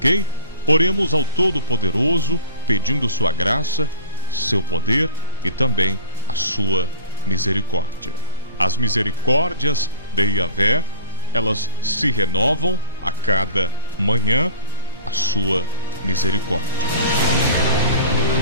Oremos ao Todo-Poderoso, pedindo sua graça, seu poder e também a sua misericórdia. As misericórdias de Yahvé, elas se renovam a cada manhã, a sua misericórdia.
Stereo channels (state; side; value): inverted; both; correlation -0.39